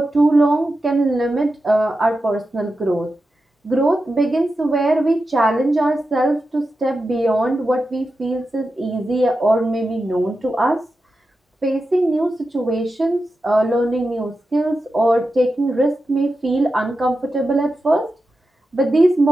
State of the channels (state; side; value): normal; both; correlation 0.90